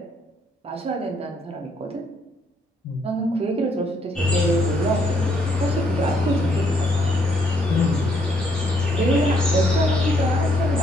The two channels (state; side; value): normal; both; correlation 0.70